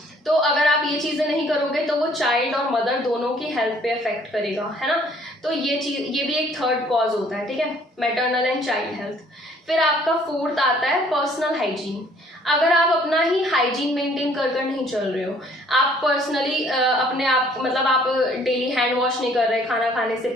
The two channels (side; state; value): both; normal; correlation 0.59